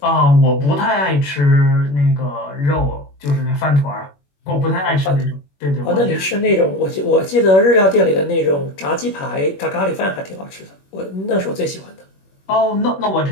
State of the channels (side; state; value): right; late; 21 ms